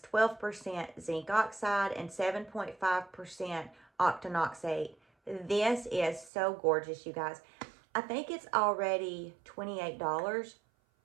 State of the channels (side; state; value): left; drops out; at 6.3 s